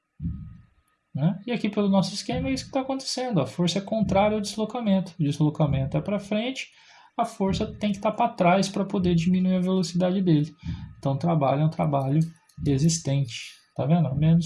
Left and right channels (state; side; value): identical; both; correlation 1.00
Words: Né? E aqui pelo nosso esquema é isso que está acontecendo. A força é contrária ao deslocamento. O deslocamento é para frente, a força tem que estar para trás para poder diminuir a velocidade dele. Então o trabalho é um trabalho resistente. Tá vendo?